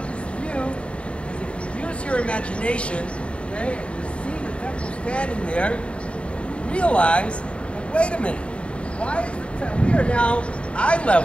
this view is if you use your imagination, okay, and you see the temple standing there, you realize that, wait a minute, why is the temple? We are now eye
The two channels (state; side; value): late; right; 0.059 ms